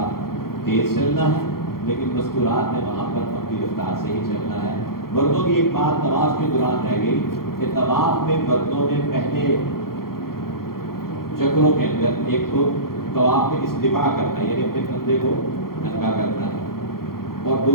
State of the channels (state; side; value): late; right; 0.93 ms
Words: تیز چلنا ہے، لیکن مستورات میں وہاں پر اپنی رفتار سے ہی چلنا ہے. مردوں کی ایک بات طواف کے دوران رہ گئی کہ طواف میں مردوں نے پہلے چکروں کے اندر ایک تو طواف میں استباع کرنا ہے، یعنی اپنے کندھے کو ننگا کرنا ہے، اور